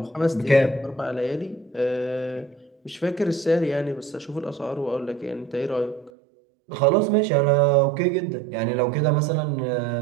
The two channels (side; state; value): left; drops out; at 6.1 s